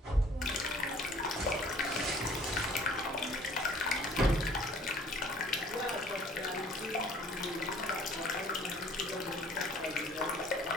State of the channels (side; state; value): both; normal; correlation 0.55